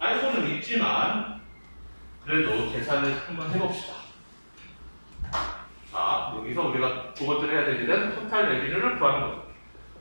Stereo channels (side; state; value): both; inverted; correlation -1.00